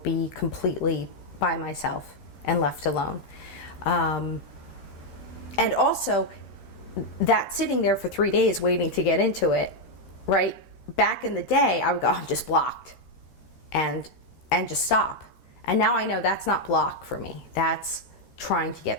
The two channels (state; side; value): late; right; 13 ms